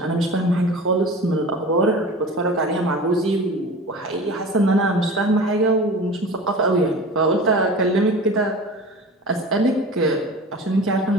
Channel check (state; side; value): normal; both; correlation 0.36